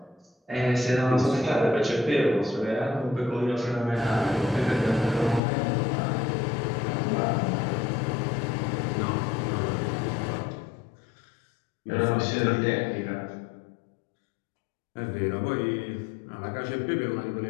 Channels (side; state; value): right; drops out; at 5.4 s